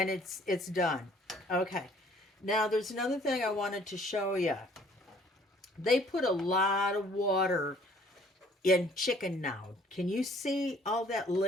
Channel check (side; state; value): both; normal; correlation 0.57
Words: done. Okay. Now there's another thing I wanted to show you. They put a lot of water in chicken now. Can you see all that